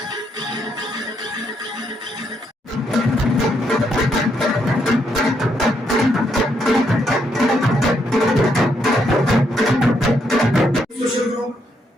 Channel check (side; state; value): both; normal; correlation 0.76